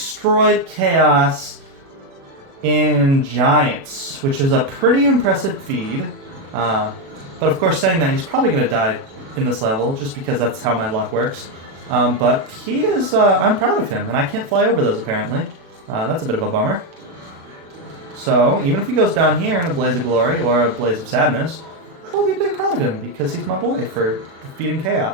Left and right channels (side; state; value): left; late; 36 ms